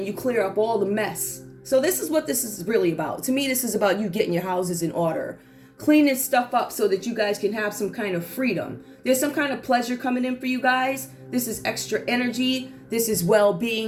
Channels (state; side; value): identical; both; correlation 1.00